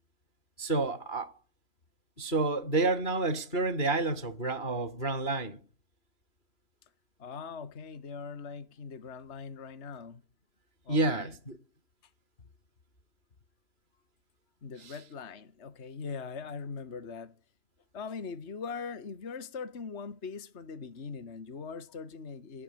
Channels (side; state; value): right; late; 3.0 ms